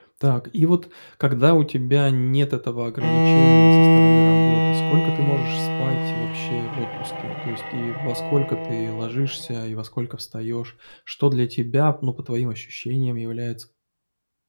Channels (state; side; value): inverted; both; correlation -1.00